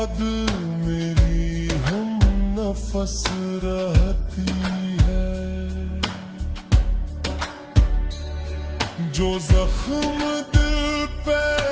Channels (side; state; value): both; identical; correlation 1.00